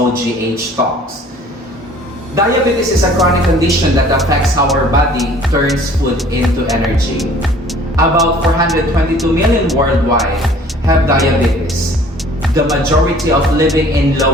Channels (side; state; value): both; normal; correlation 0.52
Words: Talks. Diabetes is a chronic condition that affects how our body turns food into energy. About 422 million worldwide have diabetes, the majority of living in